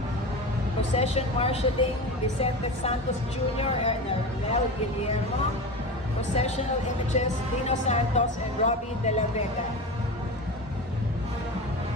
Procession Marshalling, Vicente Santos Jr. and Mel Guillermo. Processional Images, Dino Santos and Robbie De La Vega.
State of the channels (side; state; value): both; normal; correlation 0.26